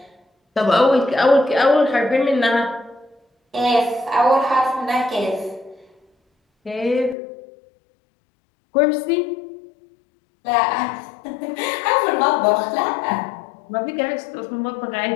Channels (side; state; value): right; drops out; at 7.2 s